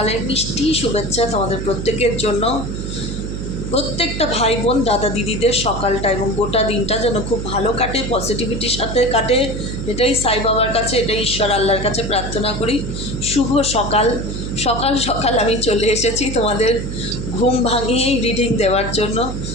মিষ্টি শুভেচ্ছা তোমাদের প্রত্যেকের জন্য। প্রত্যেকটা ভাই বোন দাদা দিদিদের সকালটা এবং গোটা দিনটা যেন খুব ভালো কাটে, পজিটিভিটির সাথে কাটে, এটাই সাই বাবার কাছে, এটাই ঈশ্বর আল্লাহর কাছে প্রার্থনা করি। শুভ সকাল। সকাল সকাল আমি চলে এসেছি তোমাদের ঘুম ভাঙিয়েই রিডিং দেওয়ার জন্য।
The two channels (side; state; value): right; noise; hum, 6 dB below the sound